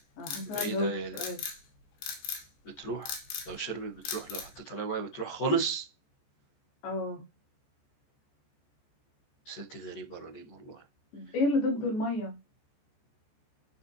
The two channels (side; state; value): right; late; 14 ms